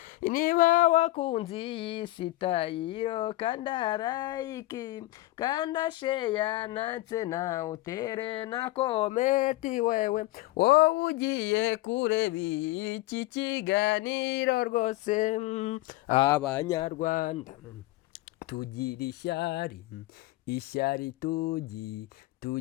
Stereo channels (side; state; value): right; quieter; 18.0 dB